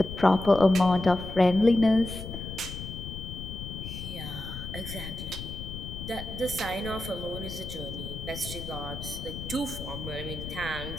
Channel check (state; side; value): noise; left; rumble, 9 dB below the sound